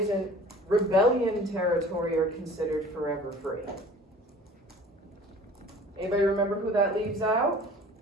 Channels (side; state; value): both; normal; correlation 0.46